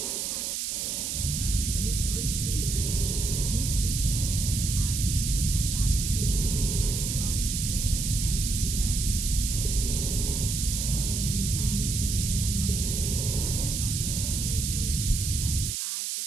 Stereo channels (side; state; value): right; noise; hiss, 2 dB below the sound